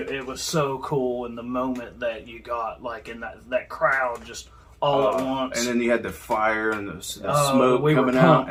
was so cool in the moment that you got like in that crowd just all at once. And then you had the fire and the Oh, smoke we were coming out, pumped,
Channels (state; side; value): identical; both; correlation 1.00